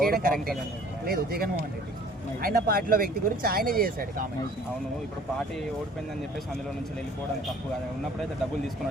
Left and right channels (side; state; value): both; normal; correlation 0.53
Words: చేయడం కరెక్టే లేదు. జగన్మోహన్ రెడ్డి ఆయన పార్టీలో వ్యక్తి గురించి ఆయన చేశాడు కామెంట్. అవును, ఇప్పుడు పార్టీ ఓడిపోయిందని చెప్పేసి అందులో నుంచి వెళ్ళిపోవడం తప్పు కదా. ఉన్నప్పుడైతే డబ్బులు